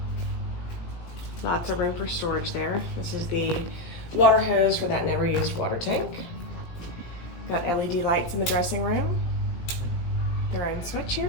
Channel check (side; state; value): right; late; 18 ms